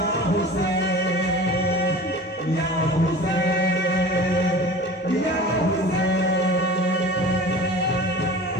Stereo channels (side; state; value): both; normal; correlation 0.39